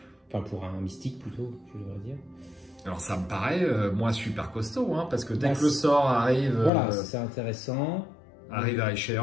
Enfin pour un mystique plutôt, je devrais dire. Alors ça me paraît moi super costaud, parce que dès que le sort arrive... Voilà, c'est intéressant. Arrive à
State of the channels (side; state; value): right; drops out; at 6.7 s